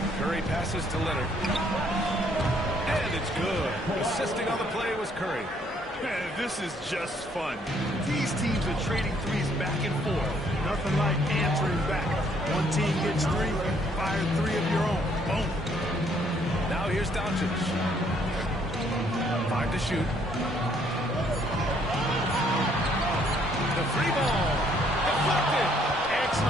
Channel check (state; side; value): normal; both; correlation 0.66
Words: Curry passes to Leonard. And it's good. Assisting on the play was Curry. Man, this is just fun. These teams are trading threes back and forth. Nothing like answering back. One team gets three, fire three of your own. Boom. Now here's Doncic. 5 to shoot. The free ball. Deflected.